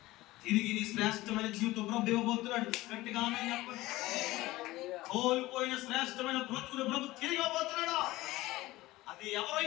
తిరిగి నీ శ్రేష్టమైన జీవితం ప్రభు ఇవ్వబోతున్నాడు. గట్టిగా ఆమె చెప్పండి. కోల్పోయిన శ్రేష్టమైన బ్రతుకుని ప్రభు తిరిగి ఇవ్వబోతున్నాడు. అది ఎవరో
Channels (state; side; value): quieter; right; 18.3 dB